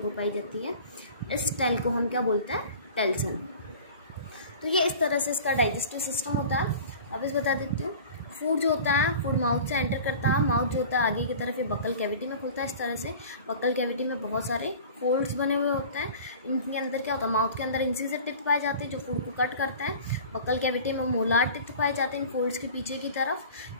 पाई जाती है। इस टेल को हम क्या बोलते हैं, टेल्सन। तो ये इस तरह से इसका डाइजेस्टिव सिस्टम होता है। वापस बता देती हूँ, फूड जो होता है फूड माउथ से एंटर करता है। माउथ जो होता है आगे की तरफ ये बकल कैविटी में खुलता है। इस तरह से बकल कैविटी में बहुत सारे फोल्ड्स बने हुए होते हैं। इनके अंदर क्या होता है, माउथ के अंदर इंसिजर टिथ पाए जाते हैं जो फूड को कट करते हैं। बकल कैविटी में मोलार टिथ पाए जाते हैं इन फोल्ड्स के पीछे की तरफ।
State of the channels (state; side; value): inverted; both; correlation -0.41